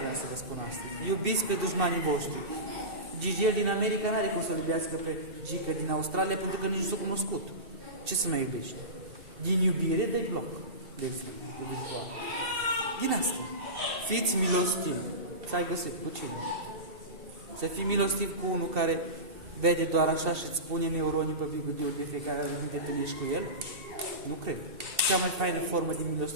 să vă spun astăzi. Iubiți pe dușmanii voștri. Gigel din America nu are cum să iubească pe Gică din Australia pentru că nici nu s-a cunoscut. Ce să mai iubești? Din iubire de bloc. De exemplu, de virtual. Din asta. Fiți milostivi. Să ai găsit cu cine. Să fii milostiv cu unul care vede doar așa și îți pune neuronii pe bigudul de fiecare dată când te întâlnești cu el? Nu cred. Cea mai faină formă de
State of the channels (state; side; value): late; left; 2.7 ms